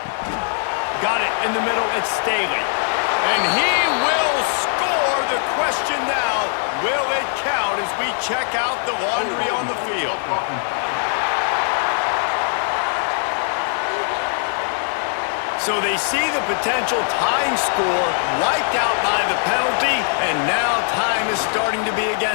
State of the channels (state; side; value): silent; right; 57 dB below the other